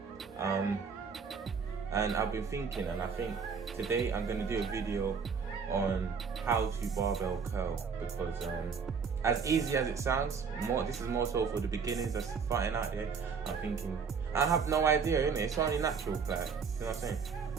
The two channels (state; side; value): quieter; left; 5.8 dB